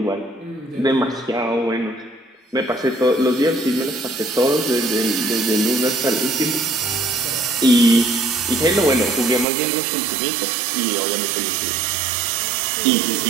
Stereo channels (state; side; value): drops out; left; at 9.5 s